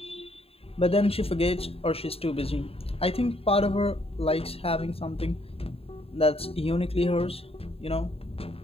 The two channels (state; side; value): late; right; 0.28 ms